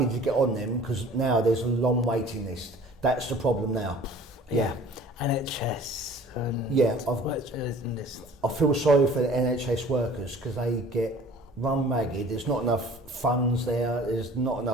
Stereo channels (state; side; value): normal; both; correlation 0.48